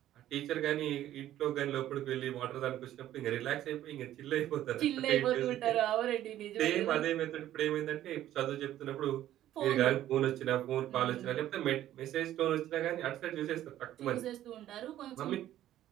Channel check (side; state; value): left; quieter; 12.8 dB